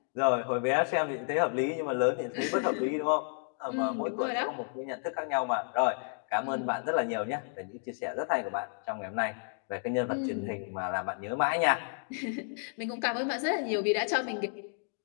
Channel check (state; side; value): silent; right; 57 dB below the other